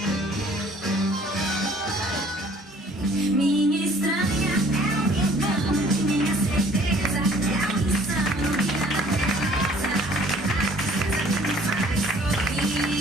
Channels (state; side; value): normal; both; correlation 0.55